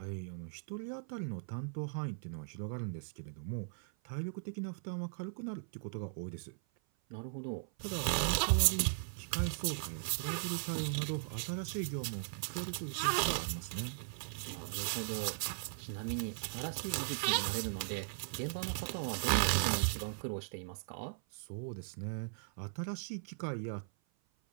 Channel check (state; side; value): silent; left; 52 dB below the other